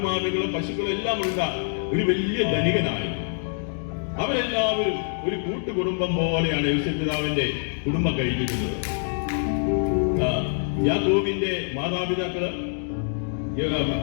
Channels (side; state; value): right; silent; digital silence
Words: പശുക്കള് എല്ലാം ഉള്ള ഒരു വലിയ ധനികനായിരുന്നു. അവരെല്ലാവരും ഒരു കൂട്ടുകുടുംബം പോലെയാണ് യോസേഫ് പിതാവിന്റെ കുടുംബം കഴിഞ്ഞിരുന്നത്. യാക്കോബിന്റെ മാതാപിതാക്കള്,